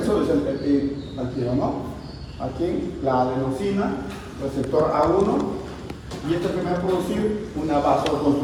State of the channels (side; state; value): both; identical; correlation 1.00